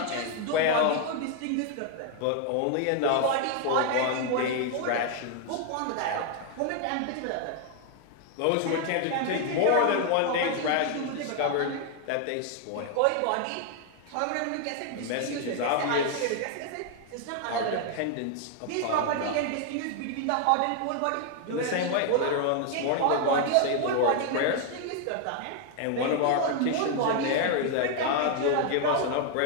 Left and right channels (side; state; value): both; different; correlation 0.00